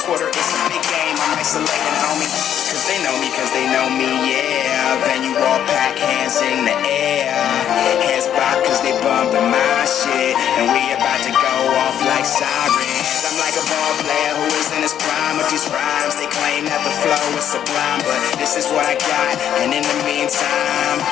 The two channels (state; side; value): quieter; right; 9.9 dB